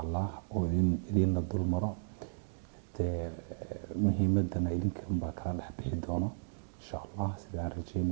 الله وإذن الدول مرة مهمتنا إذن كم بكرة نحبي دونه إن شاء الله سيدان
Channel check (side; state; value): left; silent; digital silence